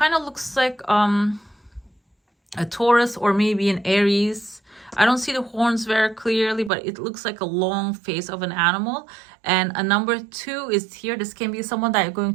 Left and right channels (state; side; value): drops out; left; at 6.7 s